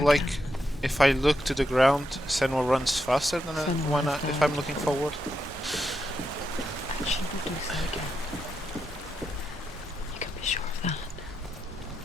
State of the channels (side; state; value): both; normal; correlation 0.84